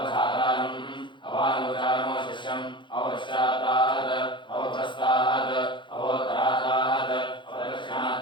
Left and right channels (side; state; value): right; late; 0.23 ms